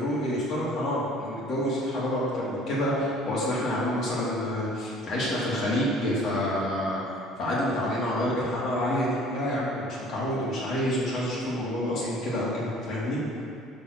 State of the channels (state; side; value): normal; both; correlation 0.51